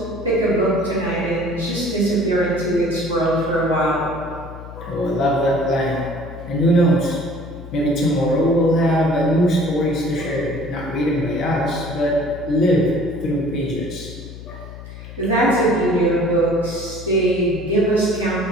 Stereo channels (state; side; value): noise; left; hum, 14 dB below the sound